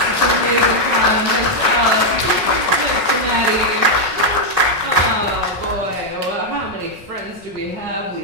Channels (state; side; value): late; left; 5.5 ms